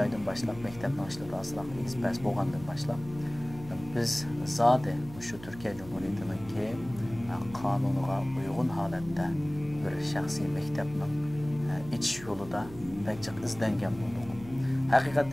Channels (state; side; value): noise; right; hum, 16 dB below the sound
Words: başlap mektepni açılıp asılaq ekspress bolgandan başlap biz zade şu Türkiye Cumhuriyeti'ninki kanunuga uygun halatda bir şahsi mektepning iç yolida pek izlengen boldik.